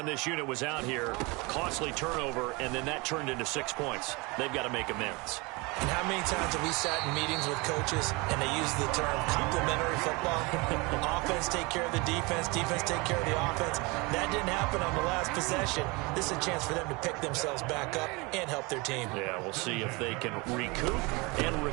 this unit was out here, costly turnover, and then that turned into 6 points. They've got to make amends. And how many times have we sat in meetings with coaches and they use the term complementary football? Offense take care of the defense, defense take care of the offense. That didn't happen on the last possession. This is a chance for them to pick themselves back up and help their team. Yeah, we'll see if they can recoup and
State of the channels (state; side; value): quieter; left; 26.4 dB